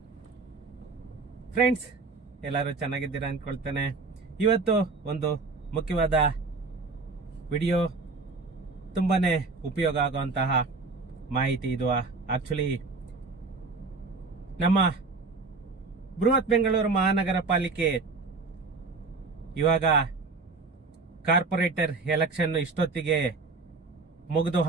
ಫ್ರೆಂಡ್ಸ್? ಎಲ್ಲರೂ ಚೆನ್ನಾಗಿದ್ದೀರಾ ಅನ್ಕೊಳ್ತೇನೆ. ಇವತ್ತು ಒಂದು ಮುಖ್ಯವಾದ ವಿಡಿಯೋ, ತುಂಬಾನೇ ಉಪಯೋಗ ಆಗುವಂತಹ ಮಾಹಿತಿ ಇದು. ಆಕ್ಚುಲಿ ನಮ್ಮ ಬೃಹತ್ ಬೆಂಗಳೂರು ಮಹಾನಗರ ಪಾಲಿಕೆ ಇವಾಗ ಕಾರ್ಪೊರೇಟರ್ ಎಲೆಕ್ಷನ್ ಇಷ್ಟೊತ್ತಿಗೆ ಮುಗಿದು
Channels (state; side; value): quieter; left; 4.0 dB